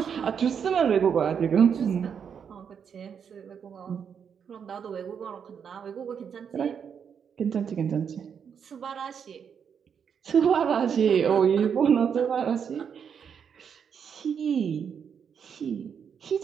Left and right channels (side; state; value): left; quieter; 7.3 dB